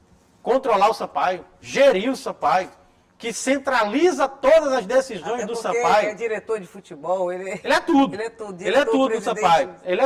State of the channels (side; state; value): both; identical; correlation 1.00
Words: controlar o Sampaio, gerir o Sampaio, que centraliza todas as decisões Até do porque Sampaio. é diretor de futebol, ele é tudo. Ele é tudo. Ele é tudo no presidente. Sampaio. Ele